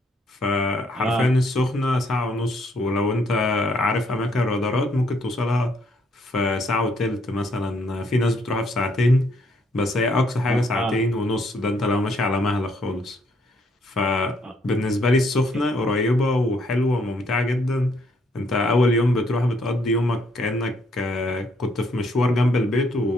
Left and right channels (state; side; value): normal; both; correlation 0.70